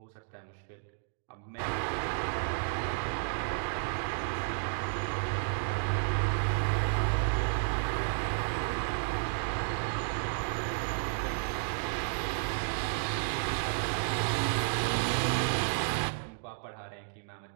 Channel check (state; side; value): silent; left; digital silence